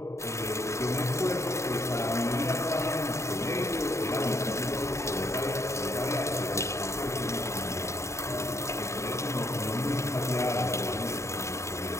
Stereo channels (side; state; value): right; late; 0.14 ms